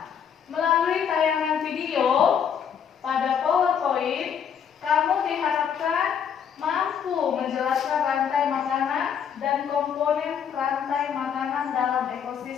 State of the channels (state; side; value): quieter; right; 7.8 dB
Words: melalui tayangan video pada PowerPoint, kamu diharapkan mampu menjelaskan rantai makanan dan komponen rantai makanan dalam